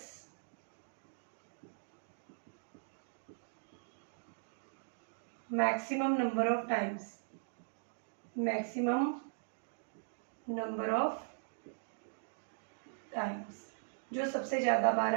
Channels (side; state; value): left; silent; digital silence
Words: maximum number of times, maximum number of times, जो सबसे ज़्यादा बार